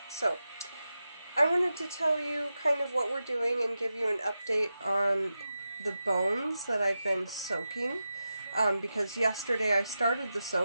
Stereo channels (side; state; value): both; inverted; correlation -0.91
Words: so I wanted to tell you kind of what we're doing and give you an update on the bones that I've been soaking, because yesterday I started the